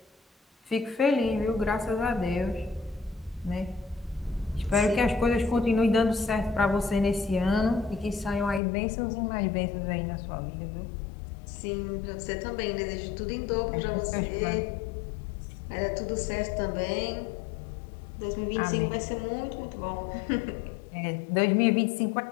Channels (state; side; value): drops out; right; at 8.6 s